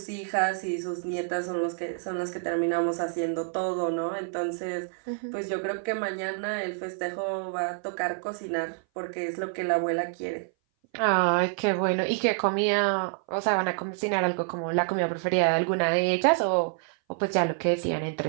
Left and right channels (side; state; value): left; silent; 58 dB below the other